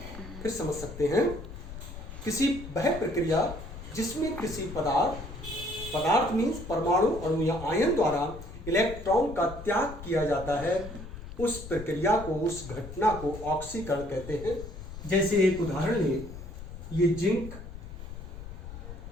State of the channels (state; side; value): noise; left; rumble, 11 dB below the sound